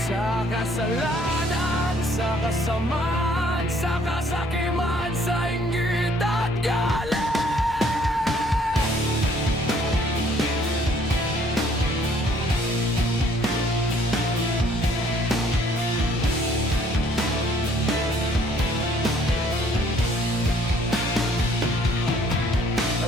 kasalanan, sa kasamaan, sa kasakiman, sa inggit at galit.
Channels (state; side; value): normal; both; correlation 0.62